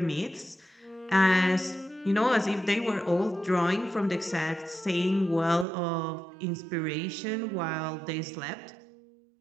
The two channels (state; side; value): drops out; left; at 5.7 s